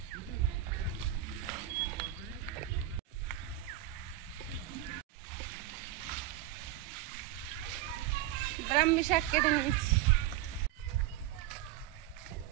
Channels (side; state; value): left; quieter; 13.3 dB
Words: ব্রাহ্মী শাক কেটে নিয়েছি।